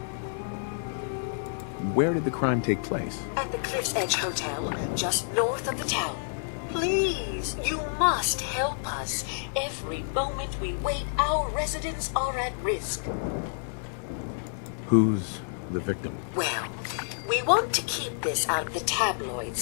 Where did the crime take place? At the Cliff's Edge Hotel, just north of the town. Please, you must help us. Every moment we wait, our residents are at risk. Who's the victim? Well, we want to keep this out of the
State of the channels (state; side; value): silent; right; digital silence